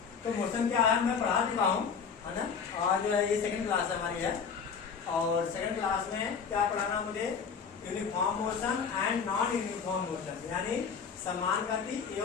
तो मोशन क्या है मैं पढ़ा चुका हूँ, है ना। आज ये सेकंड क्लास है हमारी है, और सेकंड क्लास में क्या पढ़ाना मुझे, uniform motion and non uniform motion, यानी समान गति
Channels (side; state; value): right; quieter; 6.1 dB